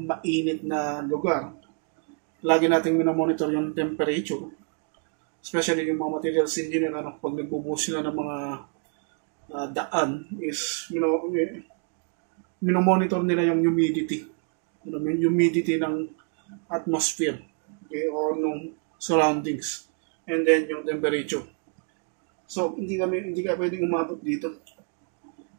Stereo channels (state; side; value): quieter; left; 39.0 dB